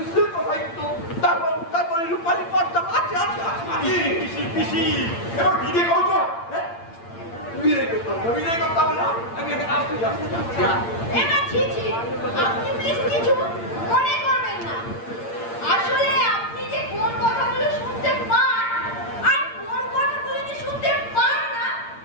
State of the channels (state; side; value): late; right; 8.7 ms